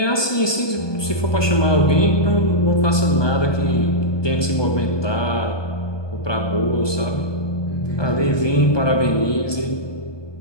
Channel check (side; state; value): right; late; 1.2 ms